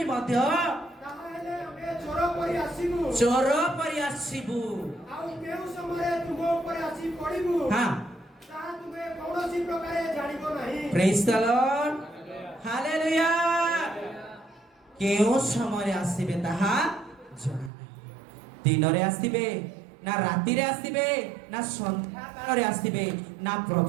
ମଧ୍ୟ ତାହେଲେ ଆମେ ଚୋର ପରି ଆସିବୁ। ଚୋର ପରି ଆସିବୁ। ଆଉ କେଉଁ ସମୟରେ ତୁମ ଉପରେ ଆସି ପଡ଼ିବୁ ହଁ ତାହା ତୁମେ କୌଣସି ପ୍ରକାରେ ଜାଣିବ ନାହିଁ। ପ୍ରେଜ୍ ଦ ଲର୍ଡ ହାଲେଲୁୟା। କେଉଁ ସମୟରେ ଆସିବେ ତାହା ଜଣା ନାହିଁ। ଦିନରେ ଆସିବେ ନା ରାତିରେ ଆସିବେ ନା ସନ୍ଧ୍ୟା କାଳରେ ଆସିବେ ନା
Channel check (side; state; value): left; drops out; at 17.7 s